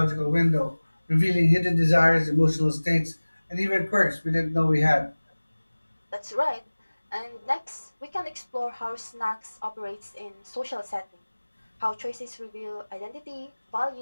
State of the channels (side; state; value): both; inverted; correlation -1.00